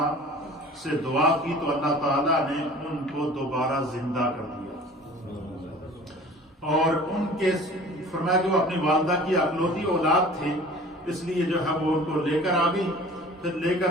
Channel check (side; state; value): both; normal; correlation 0.45